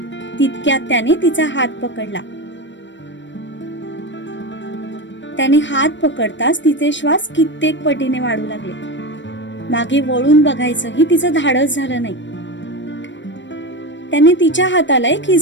तितक्यात त्याने तिचा हात पकडला. त्याने हात पकडताच तिचे श्वास कित्येक पटीने वाढू लागले. मागे वळून बघायचंही तिचं धाडस झालं नाही. त्याने तिच्या हाताला एक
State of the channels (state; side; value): late; right; 0.53 ms